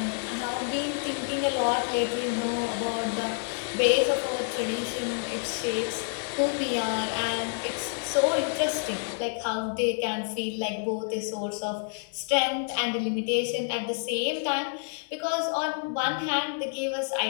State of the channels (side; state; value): right; silent; 59 dB below the other